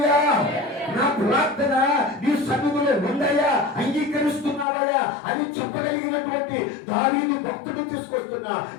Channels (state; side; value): drops out; right; at 4.7 s